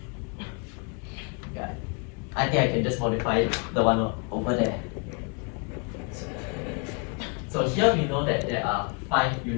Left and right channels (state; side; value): quieter; right; 35.1 dB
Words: yeah, I think I can just modify the one over there. So here we know that there are 5